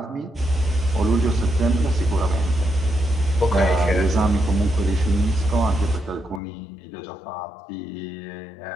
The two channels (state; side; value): drops out; right; at 6.4 s